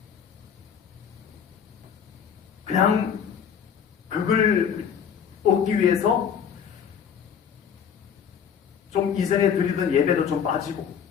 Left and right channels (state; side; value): quieter; right; 7.7 dB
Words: 그냥 그걸 얻기 위해서 좀 이전에 드리던 예배도 좀 빠지고